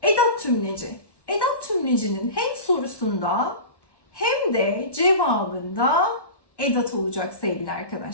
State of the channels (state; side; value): late; right; 1.2 ms